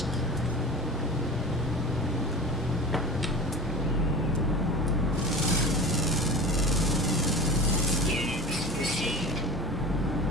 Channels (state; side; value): normal; both; correlation 0.33